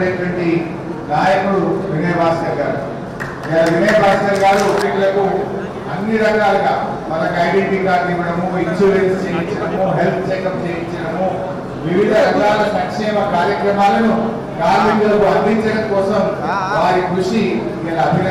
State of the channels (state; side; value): identical; both; correlation 1.00